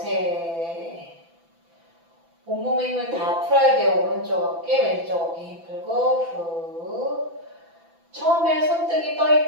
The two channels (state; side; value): late; left; 6.0 ms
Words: 온몸의 힘을 다 풀어야 돼요. 오른쪽 어깨, 왼쪽 어깨 힘 풀고 후. 처음에 손등이 떠